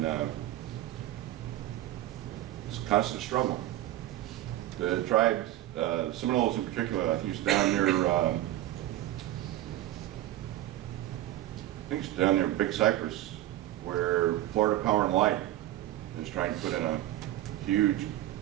it's a constant struggle. The tribes, Seminoles in particular, I think it's down near, I think it's down near Big Cypress, where Florida Power and Light is trying to put in a huge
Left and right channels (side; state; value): left; quieter; 14.3 dB